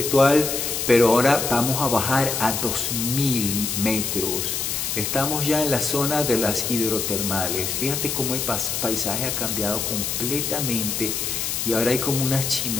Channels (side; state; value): left; noise; hiss, 2 dB below the sound